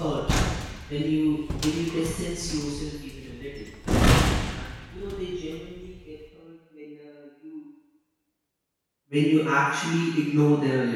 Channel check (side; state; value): both; identical; correlation 1.00